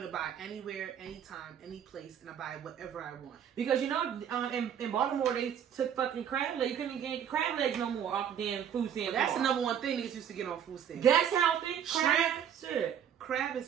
to buy anywhere, anytime, any place, and I buy whatever I want. Because, you know, in Baltimore, they took fucking crab legs. You couldn't even get crab legs no more off the damn food stamp. That's the bar. number one thing niggas used to get on food stamps. That's healthy. Shrimp. Crab. Shit. Crab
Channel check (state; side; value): quieter; left; 8.9 dB